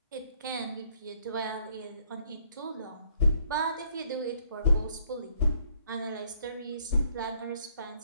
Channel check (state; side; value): inverted; both; correlation -0.65